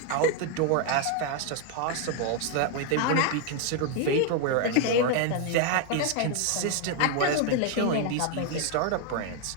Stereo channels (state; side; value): different; both; correlation 0.01